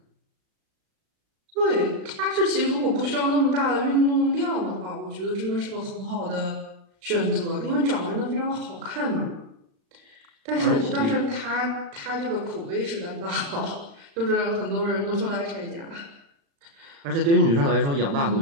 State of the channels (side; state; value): left; late; 36 ms